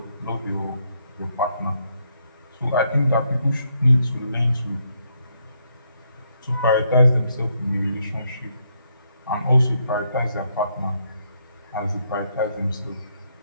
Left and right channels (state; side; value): inverted; both; correlation -0.75